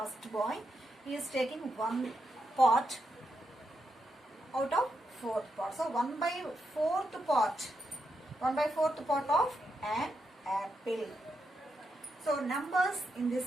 boy. He is taking one part out of fourth part. So 1/4 part. 1/4 part of an apple. So numbers in this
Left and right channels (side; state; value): both; normal; correlation 0.83